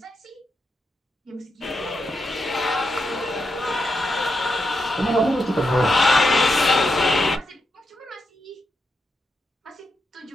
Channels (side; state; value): both; normal; correlation 0.84